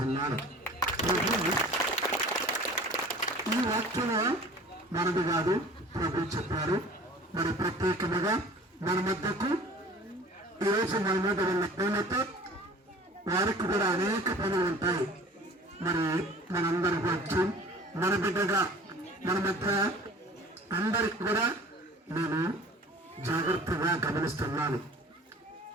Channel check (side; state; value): both; normal; correlation 0.44